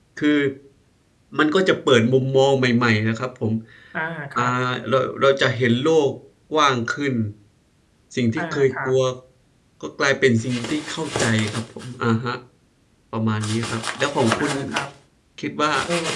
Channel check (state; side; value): identical; both; correlation 1.00